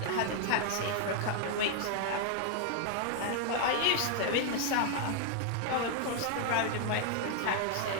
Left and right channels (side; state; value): both; different; correlation 0.00